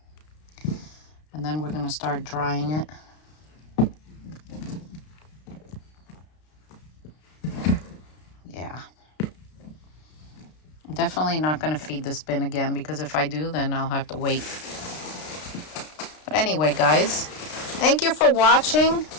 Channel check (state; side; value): late; right; 33 ms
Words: And then we're going to start drying it. Yeah. I'm definitely not going to feed this bin again, because if I do, then I'll have to wait. But anyway, guys, thank you for watching.